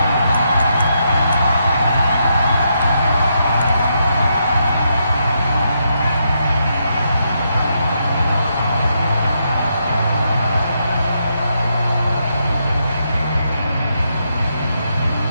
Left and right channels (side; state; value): both; inverted; correlation -0.80